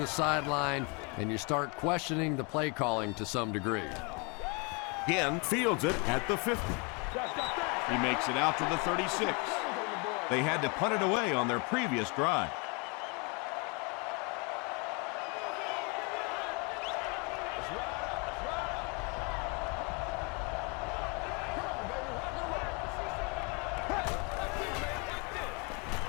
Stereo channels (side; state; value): right; quieter; 32.0 dB